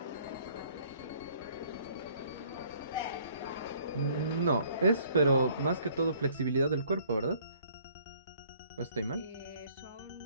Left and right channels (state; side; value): inverted; both; correlation -0.59